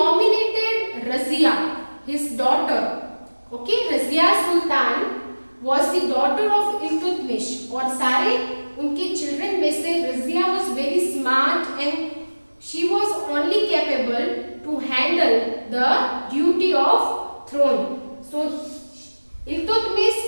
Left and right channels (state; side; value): inverted; both; correlation -1.00